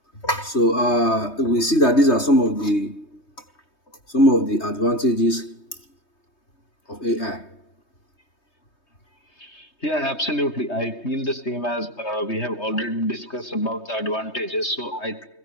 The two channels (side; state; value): right; late; 3.2 ms